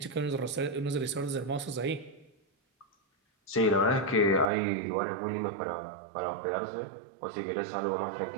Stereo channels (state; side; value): drops out; left; at 4.5 s